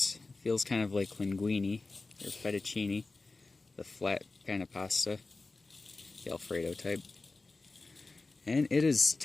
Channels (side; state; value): right; quieter; 3.6 dB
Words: feels kind of like linguine or fettuccine, the flat kind of pasta, the Alfredo type. And it is